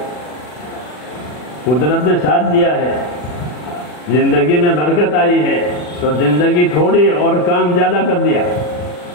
قدرت نے ساتھ دیا ہے، زندگی میں برکت آئی ہے تو زندگی تھوڑی اور کام زیادہ کر دیا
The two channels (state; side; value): late; right; 40 ms